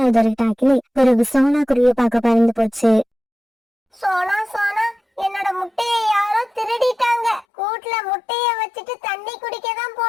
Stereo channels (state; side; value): drops out; right; at 7.5 s